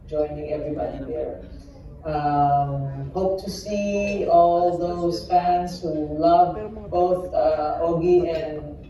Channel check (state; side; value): identical; both; correlation 1.00